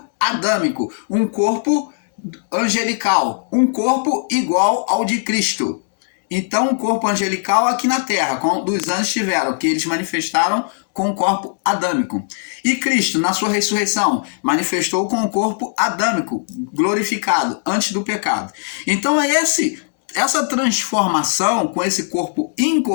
adâmico, um corpo angelical, um corpo igual ao de Cristo. Então, um corpo angelical aqui na terra, como os anjos tiveram, que eles manifestaram com o corpo adâmico. E Cristo, na sua ressurreição, manifestou com o corpo adâmico, glorificado, antes do pecado. Então, essa transformação com esse corpo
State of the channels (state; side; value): silent; right; 67 dB below the other